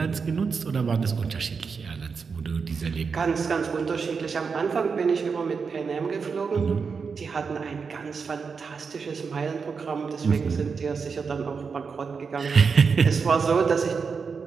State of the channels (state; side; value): quieter; left; 5.4 dB